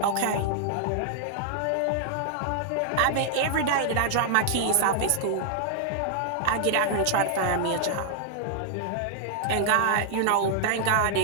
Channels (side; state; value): both; different; correlation -0.01